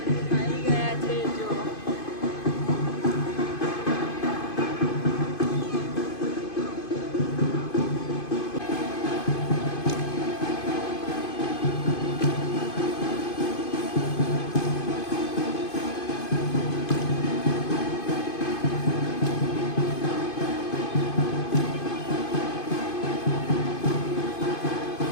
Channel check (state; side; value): late; right; 2.5 ms